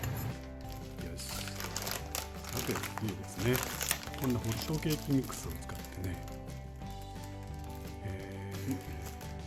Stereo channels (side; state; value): both; identical; correlation 1.00